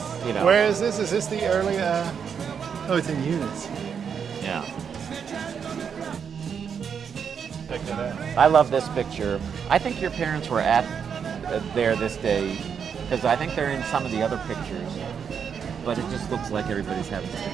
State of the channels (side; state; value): left; quieter; 7.1 dB